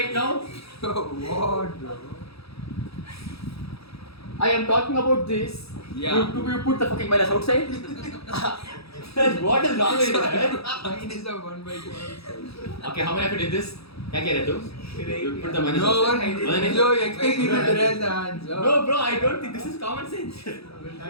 now? What, bro? I am talking about this. Yeah. You put the fucking minus outside? What is wrong with you? Mine is a 1 by 2. Okay, how many of you did this? क्या कह रहे तुम? You put the minus No one, outside. no, you expect me to erase the answer. No, bro, I don't think this is common sense.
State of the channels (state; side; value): late; right; 0.77 ms